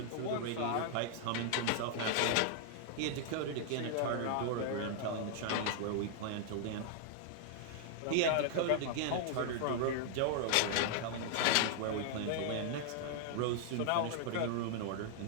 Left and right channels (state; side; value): different; both; correlation -0.01